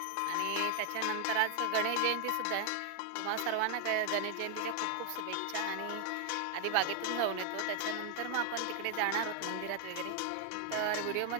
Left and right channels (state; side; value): different; both; correlation 0.00